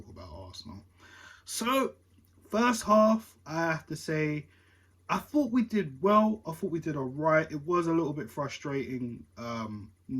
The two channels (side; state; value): both; identical; correlation 1.00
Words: about Arsenal. So, first half, I have to say, I thought we did well. I thought we did all right. It was a little bit frustrating